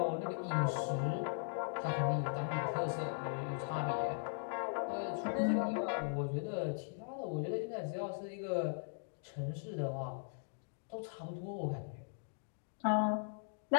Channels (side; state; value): right; silent; digital silence